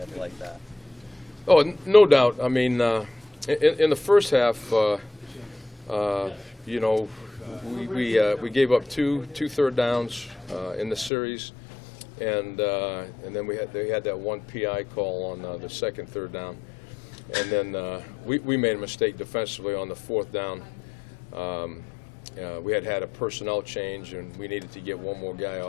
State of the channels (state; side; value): drops out; right; at 11.1 s